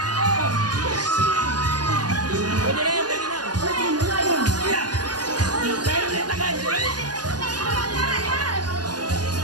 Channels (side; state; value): left; late; 0.69 ms